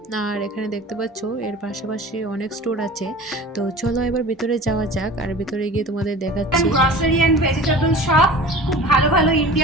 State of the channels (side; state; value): both; normal; correlation 0.39